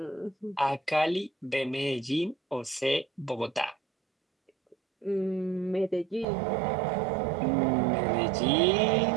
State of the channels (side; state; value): left; drops out; at 6.2 s